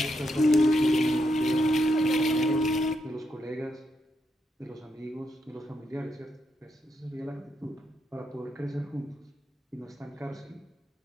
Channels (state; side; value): normal; both; correlation 0.81